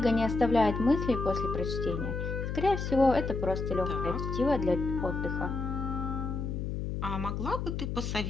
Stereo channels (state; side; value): noise; left; hum, 3 dB below the sound